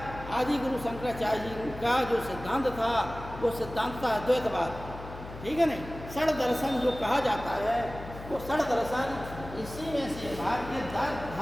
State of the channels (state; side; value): noise; left; hum, 12 dB below the sound